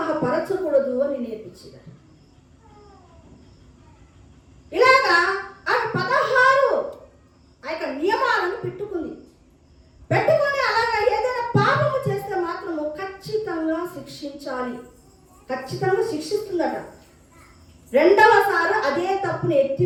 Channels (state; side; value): identical; both; correlation 1.00